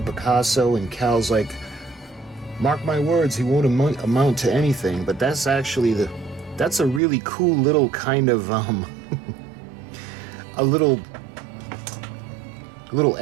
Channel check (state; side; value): drops out; left; at 7.0 s